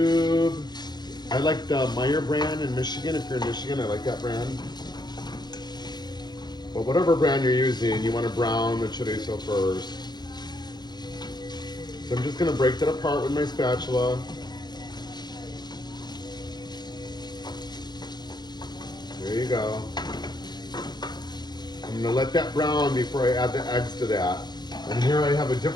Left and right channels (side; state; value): right; late; 0.20 ms